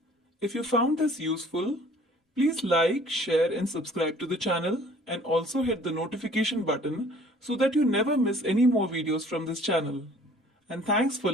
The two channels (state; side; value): normal; both; correlation 0.53